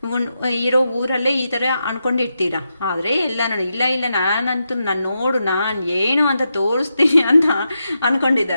ಇರೋ ಊರಲ್ಲೇ ಈ ಥರ ಅನ್ಕೊಂಡಿರ್ತೀರ. ಆದರೆ ಎಲ್ಲ ನೋಡಿ ಇಲ್ಲ ನಾನಂತೂ ನಾನು ಏನು ಅಂತ ತೋರಿಸ್ತೀನಿ ಅಂತ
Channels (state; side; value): inverted; both; correlation -0.86